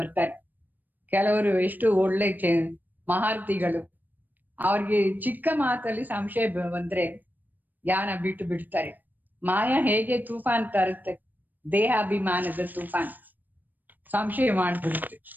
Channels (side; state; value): left; late; 0.088 ms